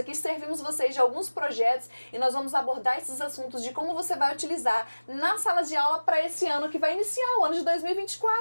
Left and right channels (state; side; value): inverted; both; correlation -1.00